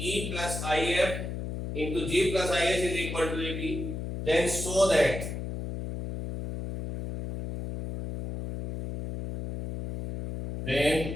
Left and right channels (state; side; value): noise; left; hum, 5 dB below the sound